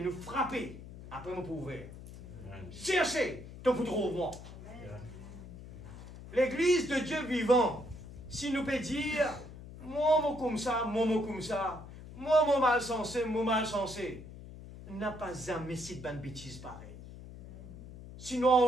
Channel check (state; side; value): noise; left; hum, 14 dB below the sound